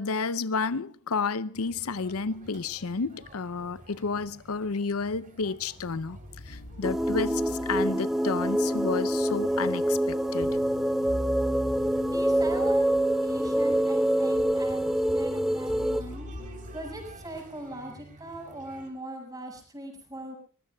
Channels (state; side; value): normal; both; correlation 0.74